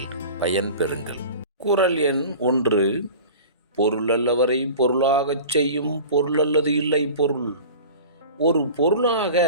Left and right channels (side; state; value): both; inverted; correlation -0.39